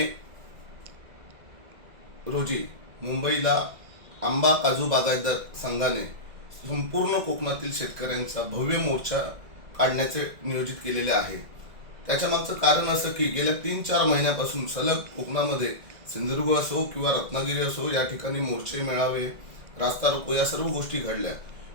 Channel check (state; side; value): late; left; 1.9 ms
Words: रोजी मुंबईला आंबा काजू बागायतदार संघाने संपूर्ण कोकणातील शेतकऱ्यांचा भव्य मोर्चा काढण्याचे नियोजित केलेले आहे। त्याच्या मागचं कारण असं की गेल्या 3-4 महिन्यापासून सलग कोकणामध्ये सिंधुदुर्ग असो किंवा रत्नागिरी असो या ठिकाणी मोर्चे मेळावे रास्ता रोको या सर्व गोष्टी घडल्या,